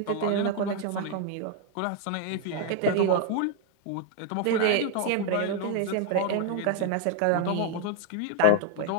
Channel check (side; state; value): both; different; correlation 0.00